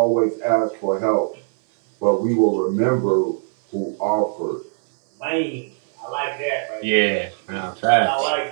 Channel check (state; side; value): silent; left; 59 dB below the other